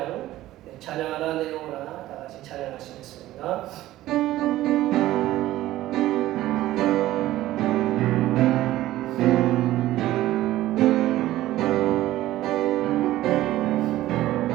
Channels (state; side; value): quieter; left; 15.2 dB